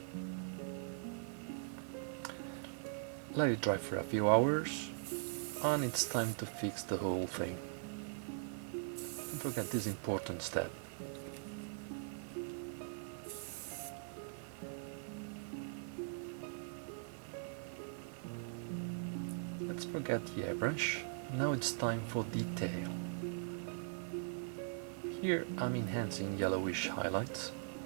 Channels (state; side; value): silent; left; 50 dB below the other